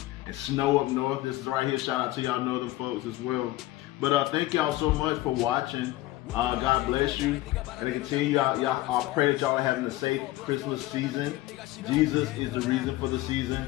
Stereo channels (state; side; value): quieter; right; 17.3 dB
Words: And snow up north. This is right here. Shout out to y'all northern folks as well. But thank y'all so much for watching. God bless you. And to continue, I pray that y'all are having a safe Christmas season. Jesus is the reason for the season.